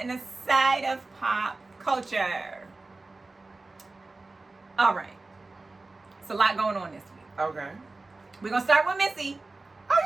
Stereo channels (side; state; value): left; quieter; 3.4 dB